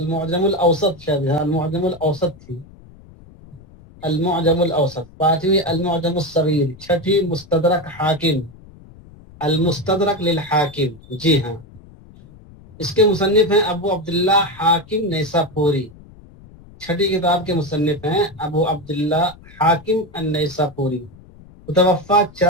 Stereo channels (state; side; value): noise; left; rumble, 22 dB below the sound